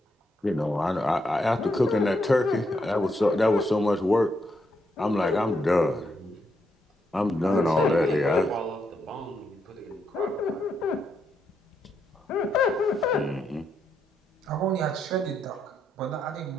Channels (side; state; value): both; normal; correlation 0.79